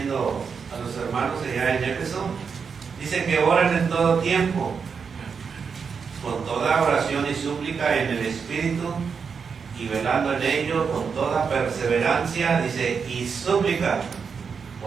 a los hermanos allá en Éfeso, dice que oren en todo tiempo, con toda oración y súplica en el Espíritu, y velando en ello con toda perseverancia, dice, y súplica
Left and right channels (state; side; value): quieter; left; 6.0 dB